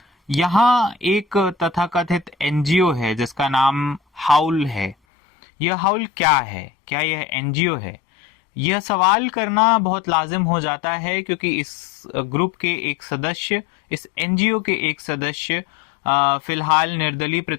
यहाँ एक तथाकथित एनजीओ है जिसका नाम हाउल है। यह हाउल क्या है? क्या यह एनजीओ है? यह सवाल करना बहुत लाजिम हो जाता है क्योंकि इस ग्रुप के एक सदस्य, इस एनजीओ के एक सदस्य फिलहाल निर्दलीय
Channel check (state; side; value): drops out; right; at 5.0 s